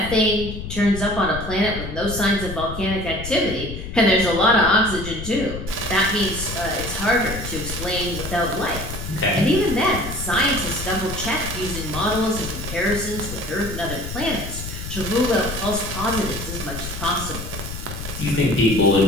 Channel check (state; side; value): noise; left; rumble, 8 dB below the sound